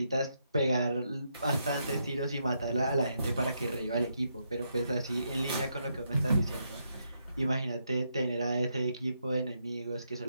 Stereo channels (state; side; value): inverted; both; correlation -0.80